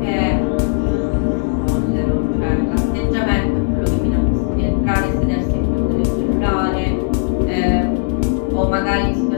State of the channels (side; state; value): right; silent; digital silence